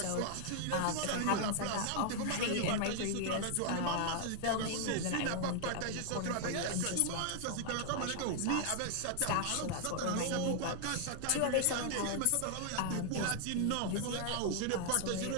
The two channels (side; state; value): both; different; correlation 0.00